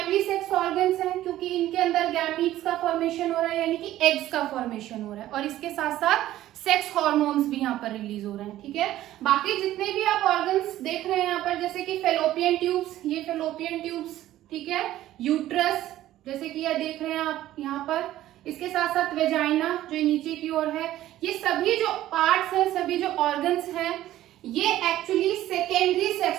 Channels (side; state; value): left; quieter; 14.0 dB